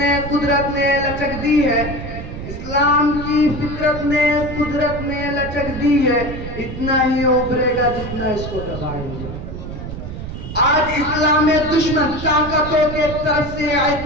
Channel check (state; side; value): noise; right; rumble, 8 dB below the sound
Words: قدرت نے لچک دی ہے اسلام کی فطرت نے قدرت نے لچک دی ہے اتنا ہی ابھرے گا جتنا اس کو دبائیں گے آج اسلام میں دشمن طاقتوں کے طرف سے